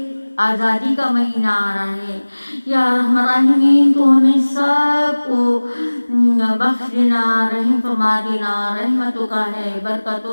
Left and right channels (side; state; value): both; inverted; correlation -1.00